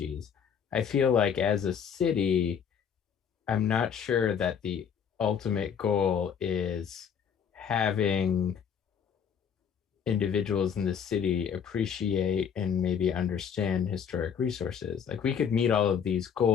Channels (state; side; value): quieter; right; 7.6 dB